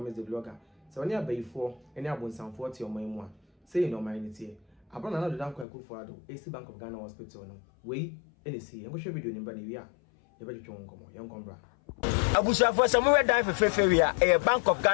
the blogger so oni abayifo ene abonsanfo ti oman mu a say no man tie abana na do dan kwa kufu ado AC Bank of Ghana Hospital no we ene si enko hwe video ni ba na wi a ye ba twetwe nkomo ye nkombra abusuafo samuwe dan fefefe a Bank of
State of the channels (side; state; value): right; drops out; at 5.7 s